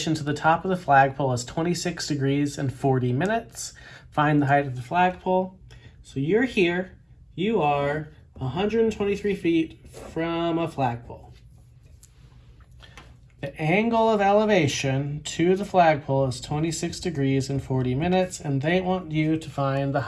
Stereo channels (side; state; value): both; identical; correlation 1.00